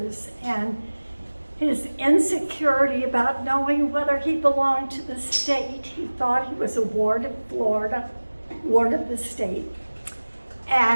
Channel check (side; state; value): both; inverted; correlation -1.00